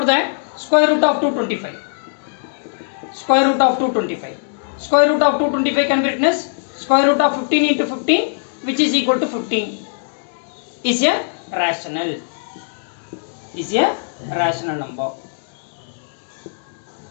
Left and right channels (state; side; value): silent; right; digital silence